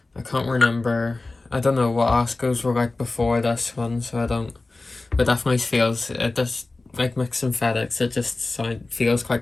I can't remember. I don't know what Askos were like before this one, so I don't. But definitely feels, it just like mix synthetics. It just feels quite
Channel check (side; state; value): right; quieter; 3.3 dB